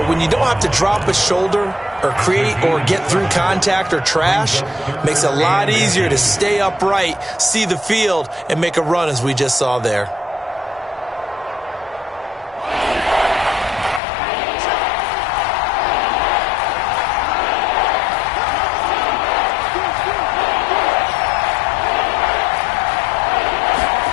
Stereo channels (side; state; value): right; drops out; at 14.0 s